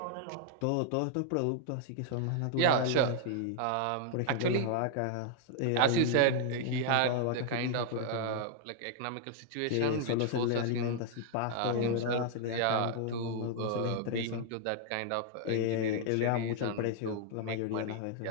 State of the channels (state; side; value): different; both; correlation -0.01